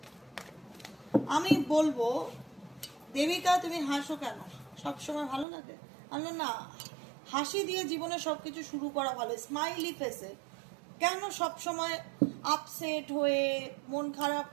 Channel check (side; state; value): left; drops out; at 5.5 s